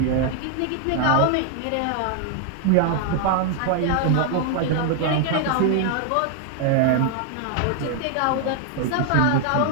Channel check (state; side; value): different; both; correlation 0.00